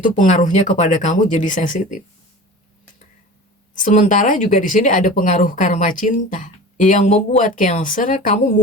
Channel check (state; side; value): normal; both; correlation 0.36